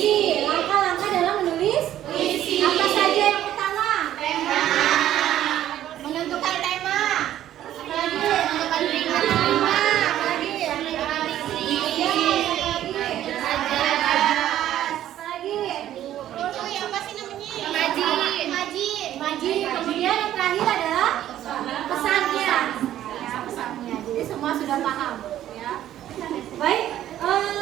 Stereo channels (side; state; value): left; quieter; 12.2 dB